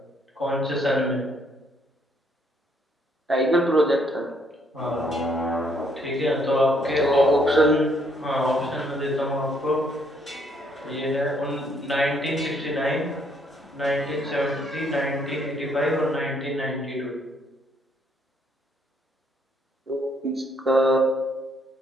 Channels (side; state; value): both; normal; correlation 0.69